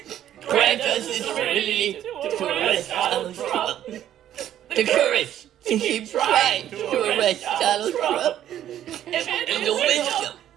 grant us the serenity to arrest Donald Trump. The courage to keep trying to arrest Donald Trump. And the wisdom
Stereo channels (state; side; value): quieter; left; 11.4 dB